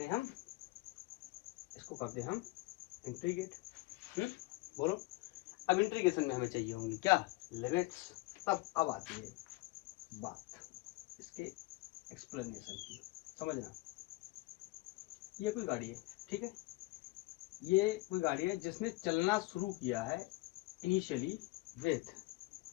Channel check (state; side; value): quieter; right; 21.5 dB